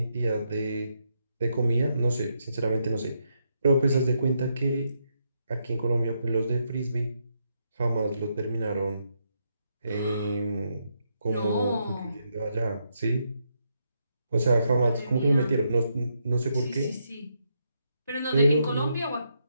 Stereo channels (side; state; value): both; inverted; correlation -0.79